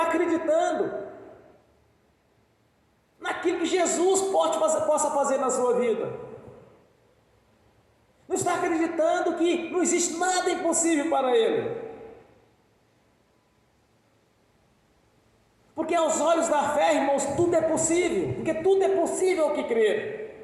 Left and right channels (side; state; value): both; identical; correlation 1.00